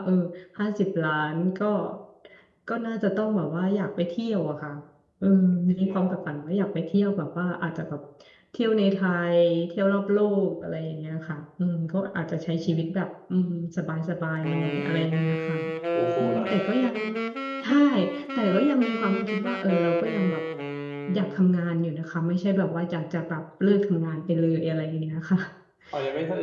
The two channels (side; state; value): both; identical; correlation 1.00